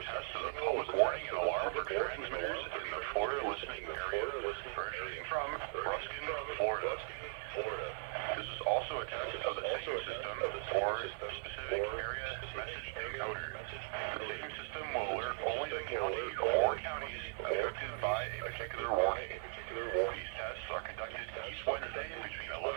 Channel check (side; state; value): left; silent; digital silence